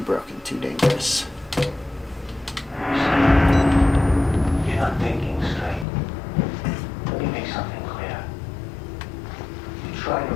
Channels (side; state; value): right; drops out; at 5.9 s